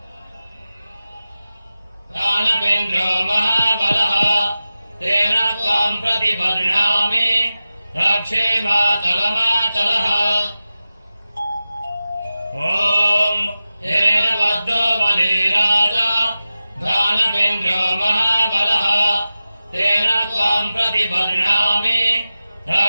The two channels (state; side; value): inverted; both; correlation -0.94